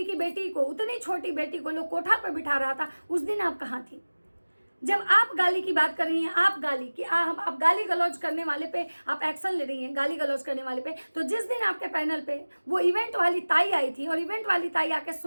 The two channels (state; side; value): inverted; both; correlation -1.00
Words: की बेटी को, उतनी छोटी बेटी को लोग कोठा पर बिठा रहा था, उस दिन आप कहाँ थी? जब आप गाली की बात कर रही हैं, आप गाली की आप गाली गलौज करने वाले पे आप एक्शन ले रही हैं, गाली गलौज करने वाले पे, तो जिस दिन आपके पैनल पे वो इवेंट वाली ताई आई थी और इवेंट वाली ताई आके